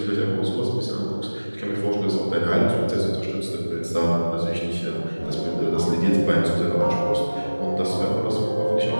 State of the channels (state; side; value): inverted; both; correlation -1.00